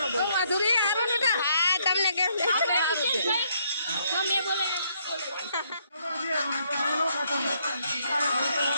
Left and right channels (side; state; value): both; inverted; correlation -0.71